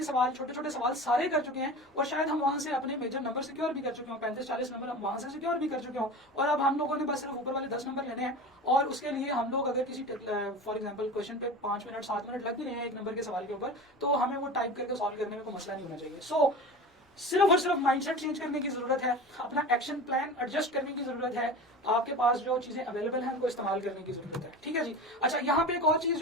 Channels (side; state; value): both; normal; correlation 0.32